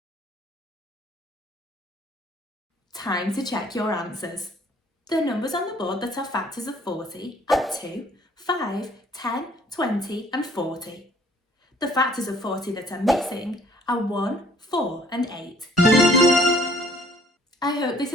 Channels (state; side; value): normal; both; correlation 0.58